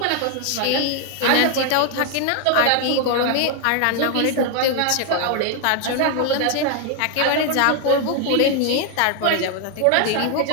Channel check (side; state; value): both; different; correlation 0.00